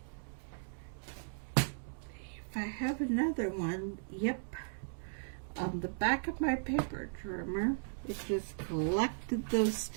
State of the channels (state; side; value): silent; left; digital silence